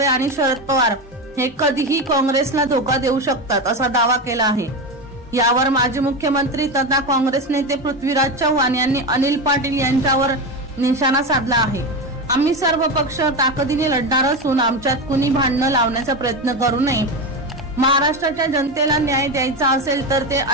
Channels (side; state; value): both; normal; correlation 0.18